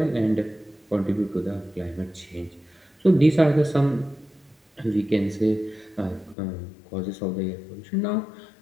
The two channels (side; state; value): right; drops out; at 6.4 s